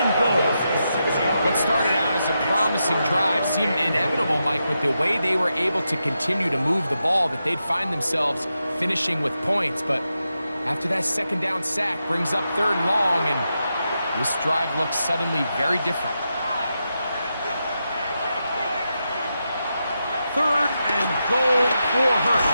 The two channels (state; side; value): inverted; both; correlation -0.87